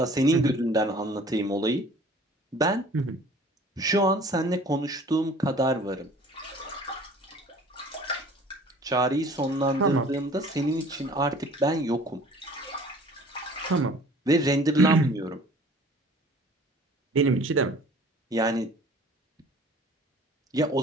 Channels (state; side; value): normal; both; correlation 0.49